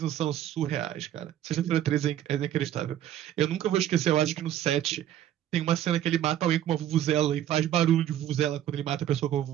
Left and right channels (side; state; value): left; quieter; 11.6 dB